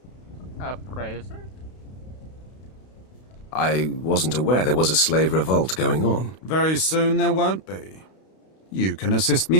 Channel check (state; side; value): late; right; 32 ms